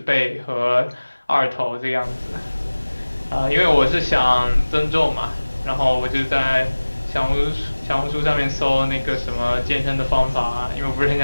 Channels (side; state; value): both; inverted; correlation -1.00